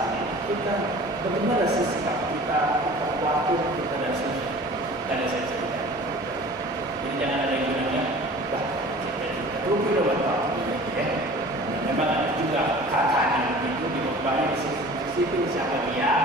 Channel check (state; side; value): normal; both; correlation 0.43